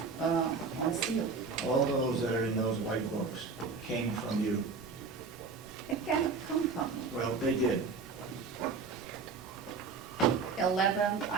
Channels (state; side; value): quieter; left; 4.8 dB